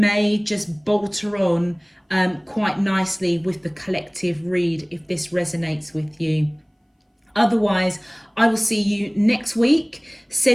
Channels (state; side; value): identical; both; correlation 1.00